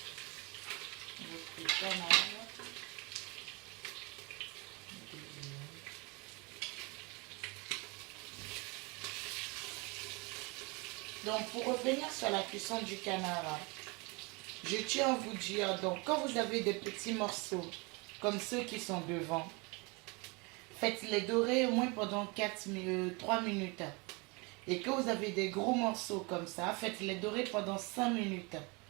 notre canard. Donc pour revenir sur la cuisson du canard, je tiens à vous dire, donc quand vous avez des petits morceaux, comme ceux qui sont devant, faites-les dorer au moins pendant 3 minutes. Et que vous avez des gros morceaux comme ça, faites-les dorer pendant 5 minutes.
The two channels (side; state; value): left; quieter; 28.5 dB